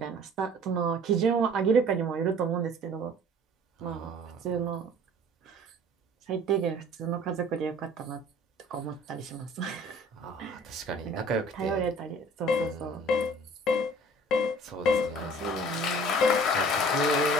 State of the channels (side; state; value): both; normal; correlation 0.50